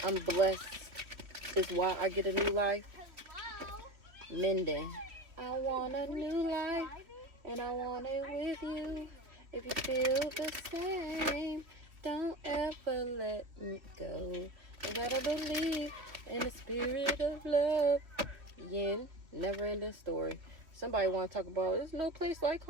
I'm blessed is why I get a new life. Minden. I want a new life, and I want it with you. If you feel the same, don't ever let me go. You gotta believe in the spirit of love. Yin, never ending story. Somebody want to talk about, there's no place like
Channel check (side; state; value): left; late; 3.2 ms